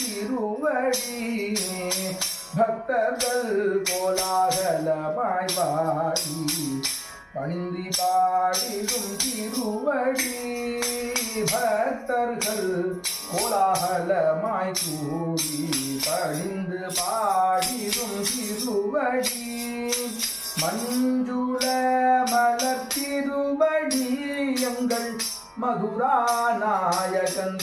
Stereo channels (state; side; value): identical; both; correlation 1.00